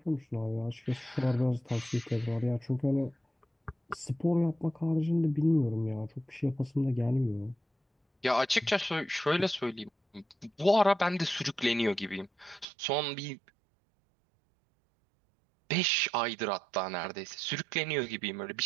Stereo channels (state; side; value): drops out; left; at 12.7 s